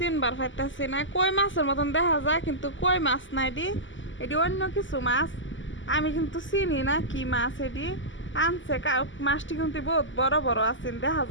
পাইতেছি না। কই মাছের মতন দেখা যায় কিন্তু কই মাছ না এটি, এটি অন্য কিছু মাছ। আমি কিন্তু চিনি না কি মাছ এটি আনছে। মাছটি কিন্তু বহুত বড় বড় আছেন, দেখা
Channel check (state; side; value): late; right; 0.55 ms